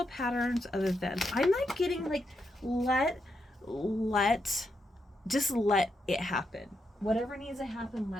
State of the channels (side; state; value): both; normal; correlation 0.82